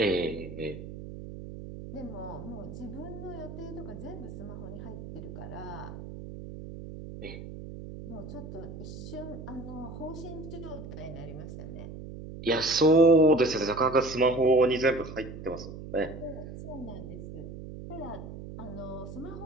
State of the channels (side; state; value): right; noise; hum, 11 dB below the sound